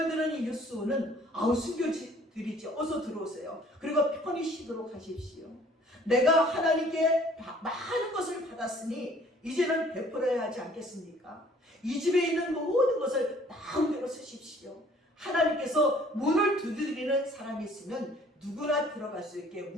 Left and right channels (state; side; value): normal; both; correlation 0.56